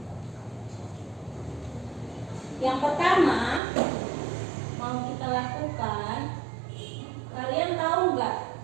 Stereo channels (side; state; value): left; drops out; at 3.6 s